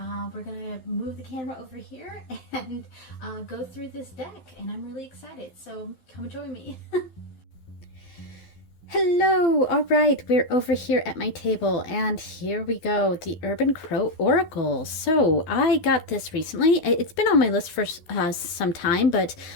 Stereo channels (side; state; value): right; late; 12 ms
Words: we're gonna move the camera over here and go through this deck, and I'm really excited. So come join me. Hello! Alright, we're over here at my table, and here we go, the Urban Crow Oracle. So, I got this recently. It's been on my list for some time, but